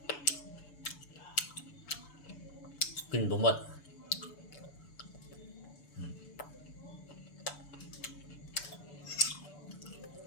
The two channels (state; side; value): late; right; 6.9 ms